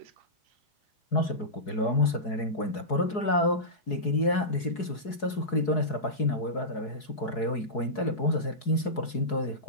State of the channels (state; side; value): late; right; 4.7 ms